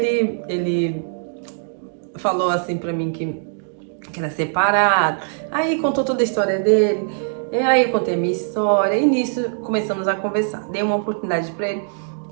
falou assim pra mim que era separado. Aí contou toda a história dele. E aí eu contei a minha história. E nisso começamos a conversar. Dei uma oportunidade pra ele.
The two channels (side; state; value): left; silent; digital silence